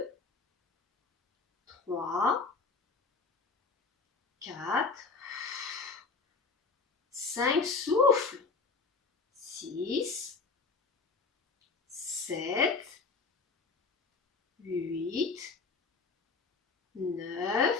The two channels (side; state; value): right; quieter; 4.5 dB